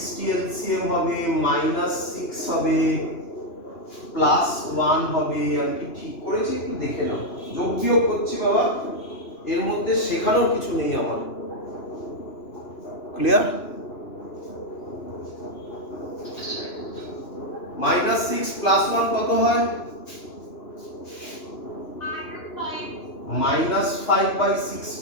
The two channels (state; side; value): late; right; 2.9 ms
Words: LCM হবে, -6 হবে, +1 হবে। আমি কি ঠিক করেছি? একটু দেখে নাও। যোগ বিয়োগ করছি বাবা, এর মধ্যে শেখানোর কিছু নেই আমার। ক্লিয়ার? -6 + 1 কত হয়?